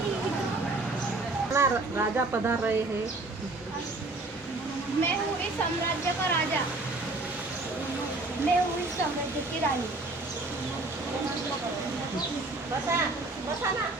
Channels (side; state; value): left; quieter; 3.1 dB